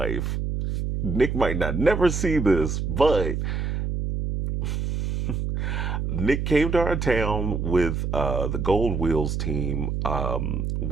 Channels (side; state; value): right; noise; hum, 1 dB below the sound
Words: Nick might not never see this, but Nick came to our town with the Gold Wheels team,